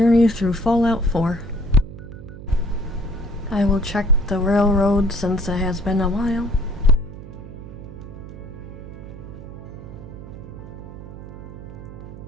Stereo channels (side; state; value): right; noise; hum, 13 dB below the sound